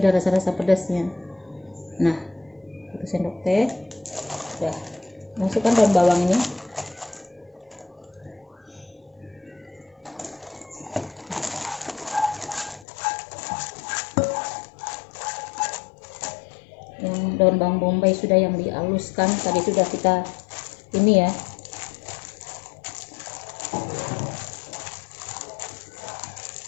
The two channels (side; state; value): right; drops out; at 12.9 s